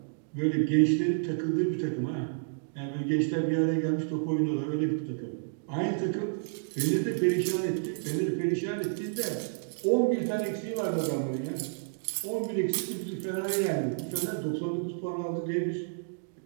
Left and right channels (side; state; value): left; silent; digital silence